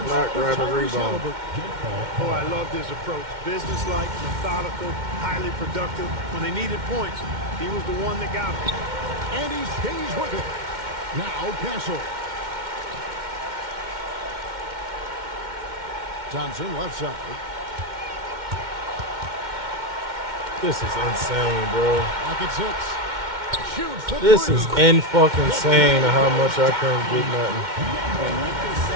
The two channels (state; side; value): late; left; 2.1 ms